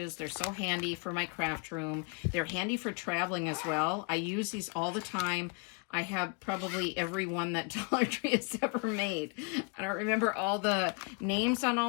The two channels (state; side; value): quieter; right; 32.9 dB